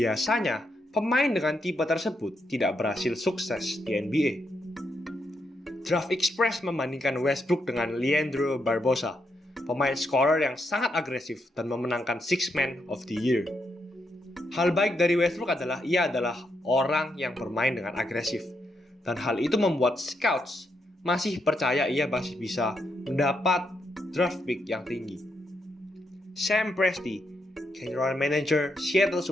pemain dengan tipe tersebut tidak berhasil sukses di NBA. Draft Express membandingkan Westbrook dengan Leandro Barbosa, pemain scorer yang sangat agresif dan memenangkan Sixth Man of the Year. Hal baik dari Westbrook adalah ia adalah orang yang bermain dengan agresif. Dan hal itu membuat scouts masih percaya ia masih bisa mendapat draft pick yang tinggi. Sam Presti, general manager Seattle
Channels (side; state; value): both; normal; correlation 0.80